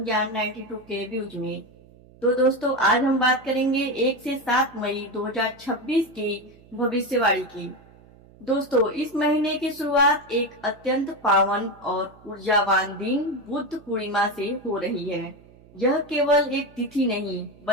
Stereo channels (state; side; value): noise; right; hum, 25 dB below the sound